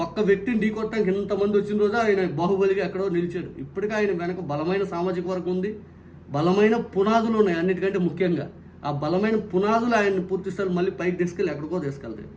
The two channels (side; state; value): both; identical; correlation 1.00